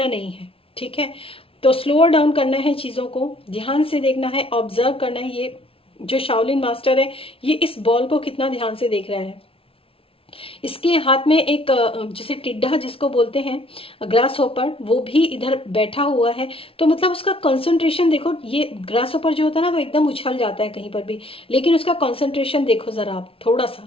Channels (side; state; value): right; late; 0.26 ms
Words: नहीं है। ठीक है, तो स्लोअर डाउन करना है, चीजों को ध्यान से देखना है, ऑब्जर्व करना है। ये जो शाओलिन मास्टर है, ये इस बॉल को कितना ध्यान से देख रहा है। इसके हाथ में एक जैसे टिड्डा जिसको बोलते हैं, ग्रास होपर, वो भी इधर बैठा हुआ है। तो मतलब उसका कंसंट्रेशन देखो, ये ग्रास होपर जो होता है ना वो एकदम उछल जाता है कहीं पर भी, लेकिन उसका कंसंट्रेशन देखो जरा आप थोड़ा